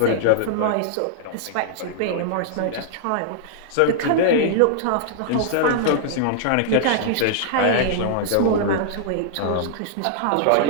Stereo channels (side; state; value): both; different; correlation -0.01